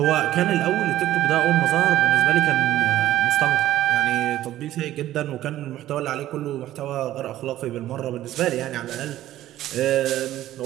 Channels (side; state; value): left; quieter; 13.8 dB